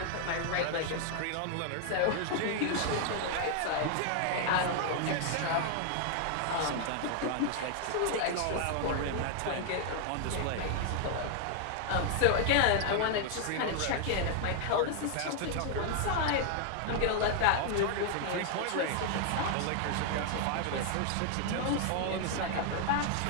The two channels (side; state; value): both; different; correlation 0.00